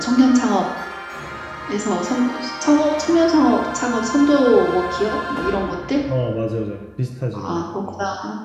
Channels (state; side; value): identical; both; correlation 1.00